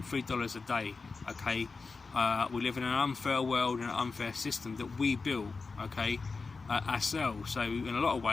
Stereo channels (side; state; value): right; quieter; 4.3 dB